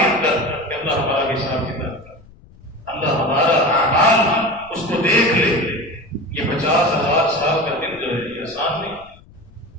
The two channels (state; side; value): noise; left; rumble, 25 dB below the sound